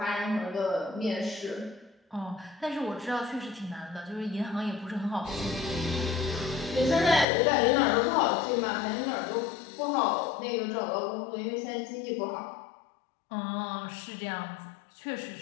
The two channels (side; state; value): right; drops out; at 7.2 s